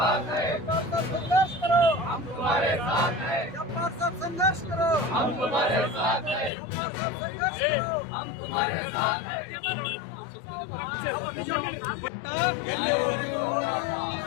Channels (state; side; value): drops out; right; at 6.5 s